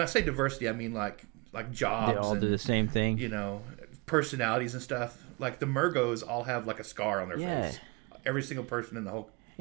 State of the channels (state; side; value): quieter; left; 29.0 dB